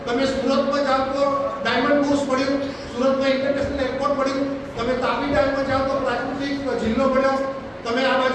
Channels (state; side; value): identical; both; correlation 1.00